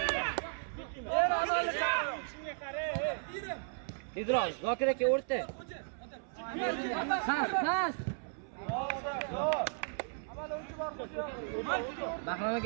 Ber amalni shunga qara. Tezroq, Zokir aka o'rta. Pas. Amal o'yinchi bor qo'sha. Bahrom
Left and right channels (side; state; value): left; silent; 54 dB below the other